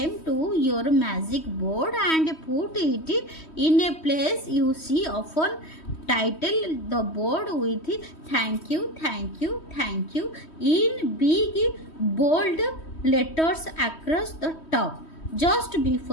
to your magic board and put it in a place you see often. Title the board with thank you in big bold letters across the top. Just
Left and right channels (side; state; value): right; late; 3.1 ms